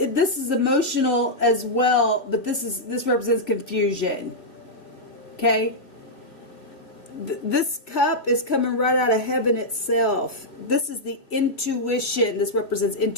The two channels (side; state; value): right; late; 2.8 ms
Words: is emotional as well, but this represents confusion. Okay? This cup is coming right out of heaven itself. This is the intuition. This represents